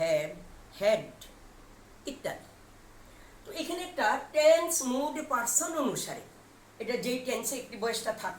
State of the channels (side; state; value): both; identical; correlation 1.00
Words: had ইত্যাদি। তো এখানে একটা টেন্স, মুড, পার্সন অনুসারে, এটা যেই টেন্সে অ্যাক্টিভ ভয়েসটা